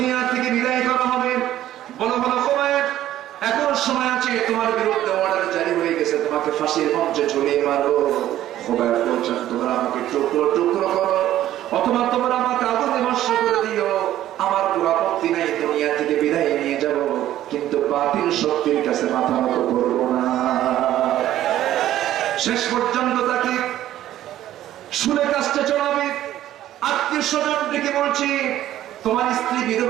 থেকে বিদায় করা হবে। বলো বলো খুবাইব, এখন সময় আছে, তোমার বিরুদ্ধে অর্ডার জারি হয়ে গেছে, তোমাকে ফাঁসির মঞ্চে ঝুলিয়ে মারো। খুবাইব বলছেন, তোমরা আমাকে টুকরো টুকরো করো, অথবা তোমরা আমাকে আগুনে ভস্ম করে দিও, আমার কোনো আপত্তি নাই, দুনিয়া থেকে বিদায় নিয়ে যাব, কিন্তু বাতিল শক্তির কাছে মাথা নত করবো না। শেষ পর্যন্ত তাকে শুনে কাজটা চলাবে। আত্মীয় স্বজন ডেকে বলছি, তোমার স্ত্রী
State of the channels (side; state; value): left; quieter; 13.0 dB